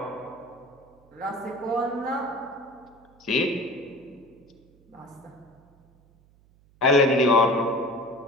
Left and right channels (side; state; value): right; noise; hum, 30 dB below the sound